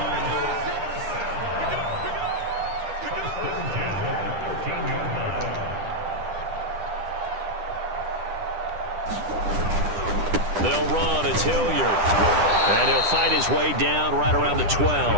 They'll run. It's Hilliard. And he'll fight his way down right around the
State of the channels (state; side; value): late; left; 10 ms